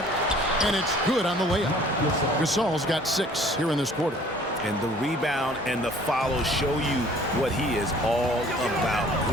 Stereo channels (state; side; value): normal; both; correlation 0.53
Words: and it's good on the layup. Gasol's got 6 here in this quarter. And the rebound and the follow show you what he is all about.